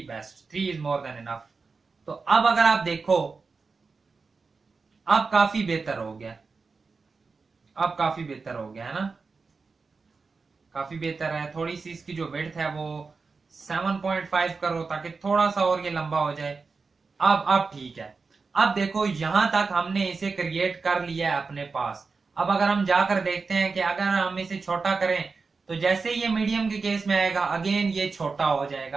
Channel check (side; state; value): left; quieter; 4.5 dB